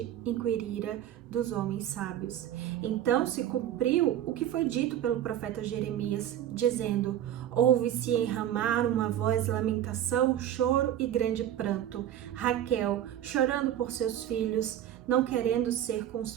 inquirira dos homens sábios. Então se cumpriu o que foi dito pelo profeta Jeremias, dizendo, ouve-se em Ramá uma voz de lamentação, choro e grande pranto. Raquel, chorando por seus filhos, não querendo ser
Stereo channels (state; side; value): quieter; left; 11.3 dB